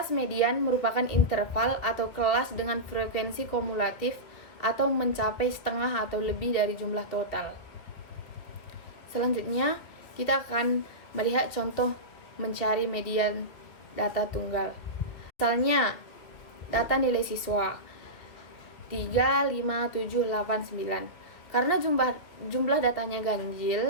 median merupakan interval atau kelas dengan frekuensi kumulatif atau mencapai setengah atau lebih dari jumlah total. Selanjutnya, kita akan melihat contoh mencari median data tunggal. Misalnya, data nilai siswa 3, 5, 7, 8, 9. Karena jumlah datanya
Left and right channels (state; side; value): late; right; 3.0 ms